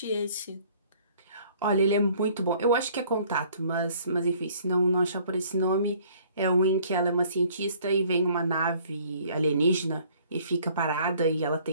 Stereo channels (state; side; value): inverted; both; correlation -0.57